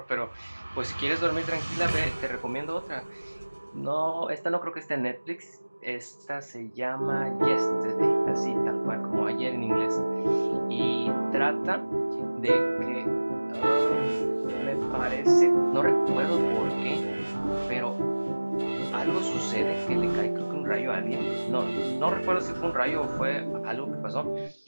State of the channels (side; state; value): both; inverted; correlation -1.00